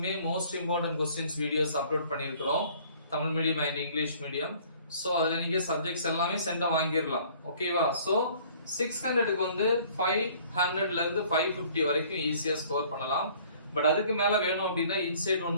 most important questions videos upload பண்ணியிருக்கிறோம். Tamil medium and English medium. So அதுல நீங்க சப்ஜெக்ட்ஸ் எல்லாமே சென்டா வாங்கிரலாம். ஓகேவா? சோ 600க்கு வந்து 500ல இருந்து 550 வரைக்கும் ஈஸியா ஸ்கோர் பண்ணலாம். பட் அதுக்கு மேல வேணும் அப்படின்னா இன்சைட் 1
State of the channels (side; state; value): both; inverted; correlation -0.55